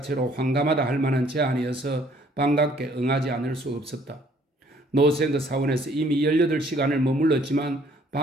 황감하다 할 만한 제안이어서 반갑게 응하지 않을 수 없었다. 노생그 사원에서 이미 18시간을 머물렀지만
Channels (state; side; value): normal; both; correlation 0.61